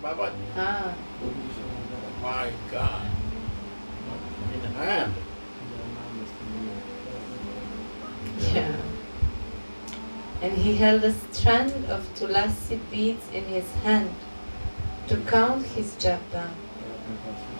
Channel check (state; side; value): inverted; both; correlation -1.00